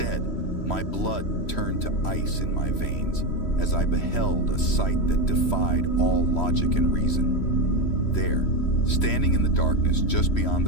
my blood turned to ice in my veins as I beheld a sight that defied all logic and reason. There, standing in the darkness just beyond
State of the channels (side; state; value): right; late; 3.1 ms